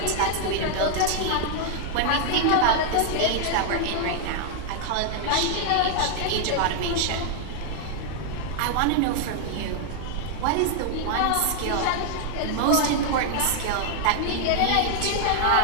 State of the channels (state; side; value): different; both; correlation 0.00